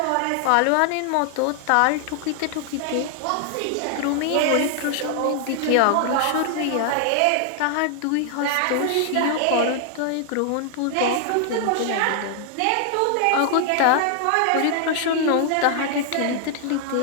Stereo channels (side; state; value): both; different; correlation 0.00